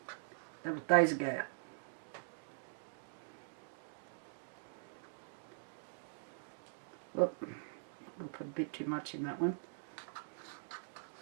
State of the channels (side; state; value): left; silent; digital silence